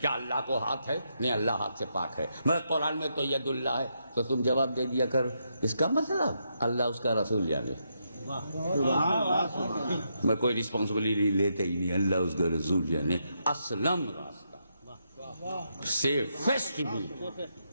کیا اللہ کو ہاتھ ہے؟ نہیں، اللہ ہاتھ سے پاک ہے. مگر قرآن میں تو ید اللہ ہے. تو تم جواب دے دیا کر اس کا مطلب اللہ اس کا رسول جانے. میں کوئی رسپانسبلٹی لیتے ہی نہیں، اللہ اس کا رسول جانے. اسلم راستہ، سیفسٹ روٹ.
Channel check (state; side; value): inverted; both; correlation -0.81